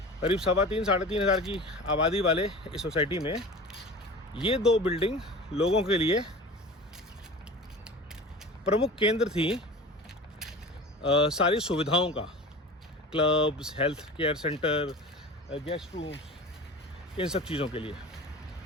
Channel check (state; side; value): normal; both; correlation 0.36